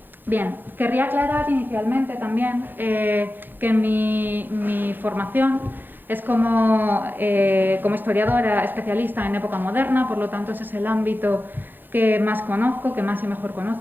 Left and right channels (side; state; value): left; late; 0.092 ms